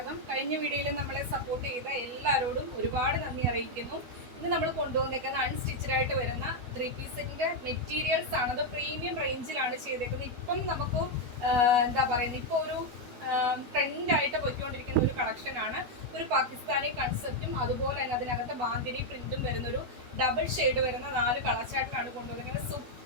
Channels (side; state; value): left; late; 12 ms